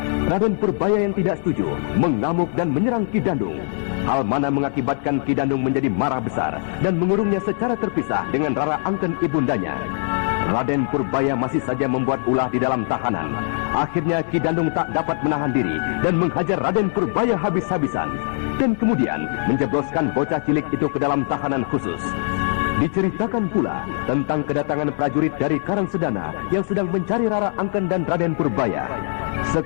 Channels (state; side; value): silent; right; 61 dB below the other